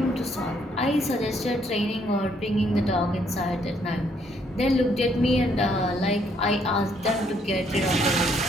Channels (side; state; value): both; normal; correlation 0.69